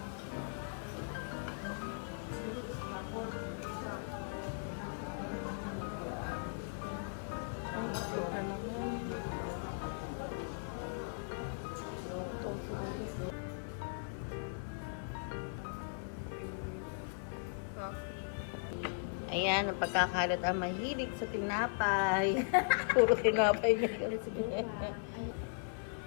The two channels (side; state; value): right; silent; 52 dB below the other